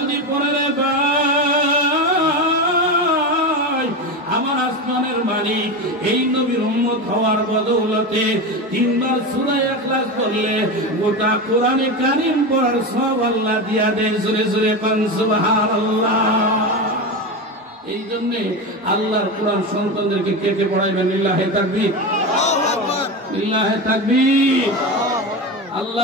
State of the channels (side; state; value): both; normal; correlation 0.20